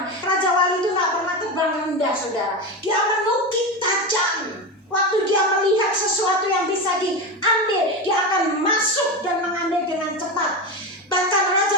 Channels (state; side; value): normal; both; correlation 0.19